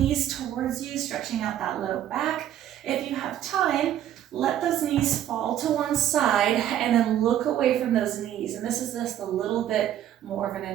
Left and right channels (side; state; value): left; quieter; 11.3 dB